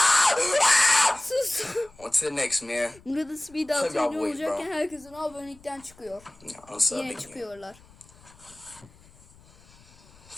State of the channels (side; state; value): left; noise; rumble, 26 dB below the sound